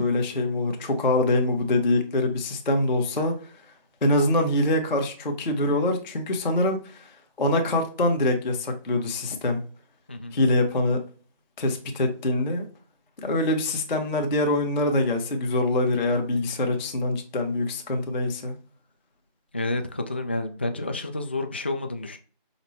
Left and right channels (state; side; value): inverted; both; correlation -0.46